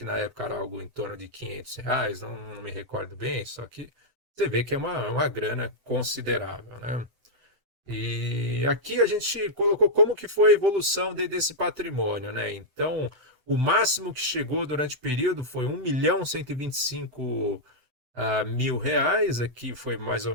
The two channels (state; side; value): late; left; 7.9 ms